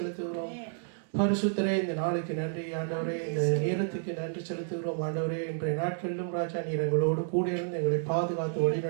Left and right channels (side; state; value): left; silent; digital silence